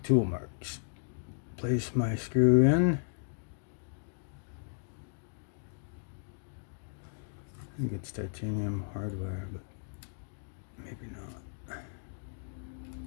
marks. Place my screw in. I think it's titanium hardware, but maybe not.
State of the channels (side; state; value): right; silent; digital silence